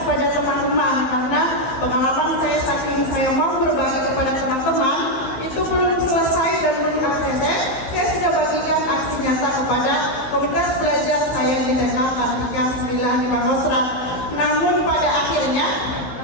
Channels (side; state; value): right; late; 16 ms